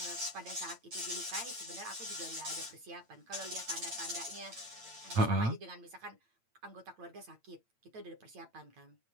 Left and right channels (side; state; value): left; late; 8.8 ms